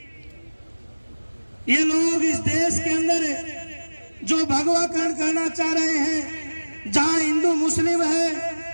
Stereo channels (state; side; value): inverted; both; correlation -1.00